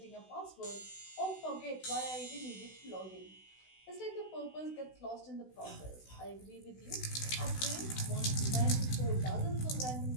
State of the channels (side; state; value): right; late; 16 ms